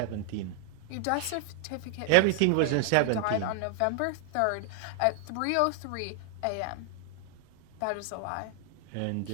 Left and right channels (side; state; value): both; different; correlation 0.00